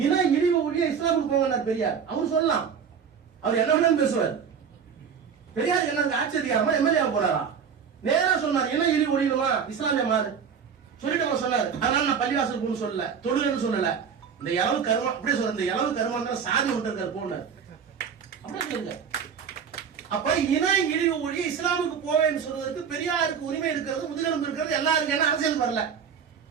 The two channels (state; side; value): quieter; left; 7.0 dB